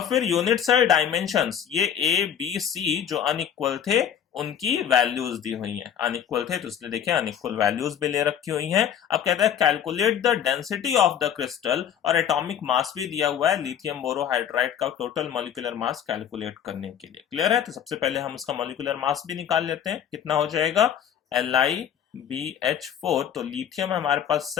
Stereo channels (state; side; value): quieter; right; 9.0 dB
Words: फिर यूनिट सेल डायमेंशंस, ये ए बी सी जो अनइक्वल थे उनकी वैल्यूज दी हुई हैं। अनइक्वल थे तो इसलिए देखिए अनइक्वल वैल्यूज भी ले रखी हुई हैं। अब कहता है calculate the density of the crystal, और एटॉमिक मास भी दिया हुआ है लिथियम बोरोहाइड्राइड का टोटल मॉलिक्यूलर मास कैलकुलेट करने के लिए। क्लियर है? तो सबसे पहले हम उसका मॉलिक्यूलर मास भी निकाल लेते हैं। कितना हो जाएगा, LiBH4, तो लिथियम हमारे पास